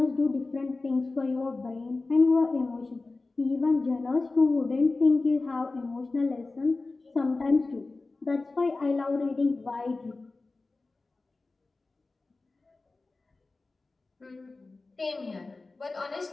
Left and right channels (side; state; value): right; quieter; 3.5 dB